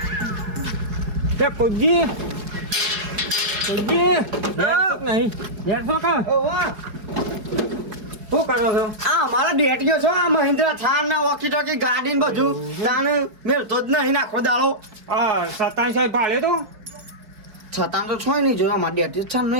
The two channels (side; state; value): left; late; 4.9 ms